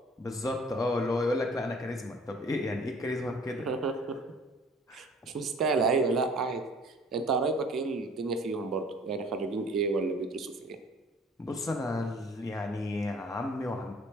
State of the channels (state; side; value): normal; both; correlation 0.51